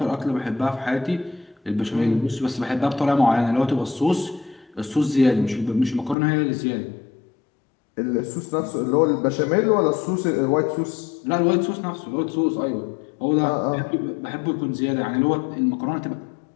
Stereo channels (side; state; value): right; drops out; at 6.2 s